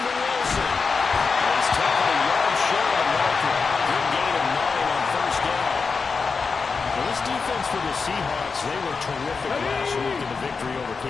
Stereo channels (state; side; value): quieter; right; 4.9 dB